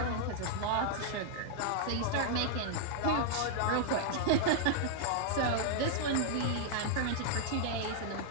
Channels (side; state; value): both; different; correlation -0.01